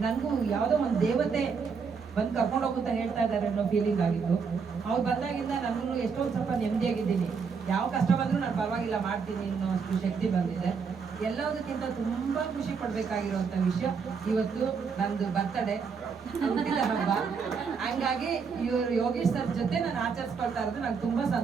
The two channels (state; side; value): quieter; left; 5.7 dB